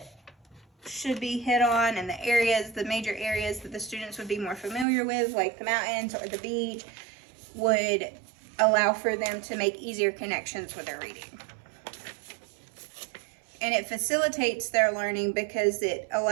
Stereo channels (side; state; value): left; drops out; at 4.9 s